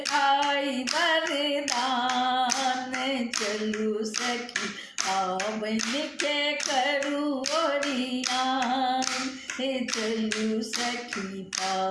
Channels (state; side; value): identical; both; correlation 1.00